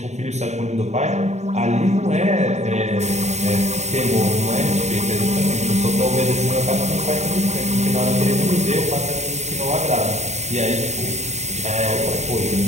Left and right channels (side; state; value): left; late; 0.33 ms